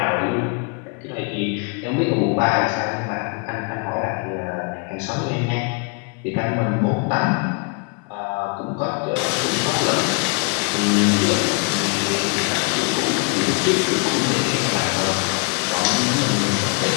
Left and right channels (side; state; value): right; quieter; 30.3 dB